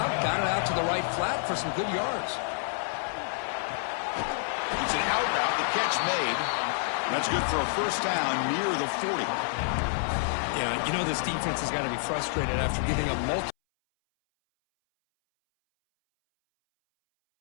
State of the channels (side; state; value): right; silent; 59 dB below the other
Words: got it out to the right flat for some good yards. It's an out route, the catch made. That's good for a 1st down near the 40. Yeah, you know this defense has got to be frustrated after giving up multiple.